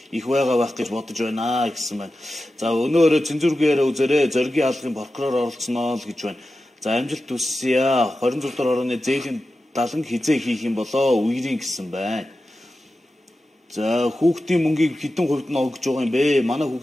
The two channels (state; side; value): normal; both; correlation 0.93